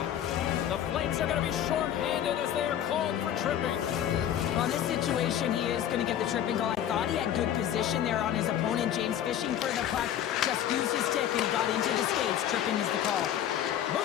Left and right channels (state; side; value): quieter; right; 10.6 dB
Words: The Flames are going to be shorthanded as they are called for tripping. On this situation, he is going to get the tripping goal. I thought he had good position there on his opponent. James fishing for the puck. Just used his stick and he got into the skates. Tripping is the call.